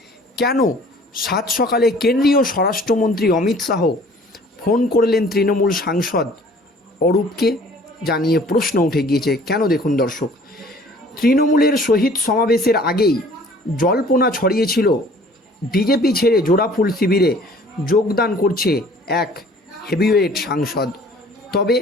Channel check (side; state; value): both; normal; correlation 0.52